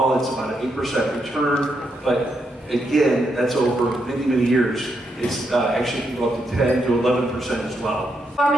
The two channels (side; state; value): both; normal; correlation 0.80